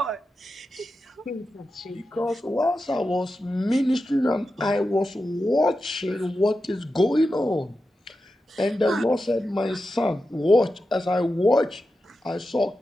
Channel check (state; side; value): normal; both; correlation 0.91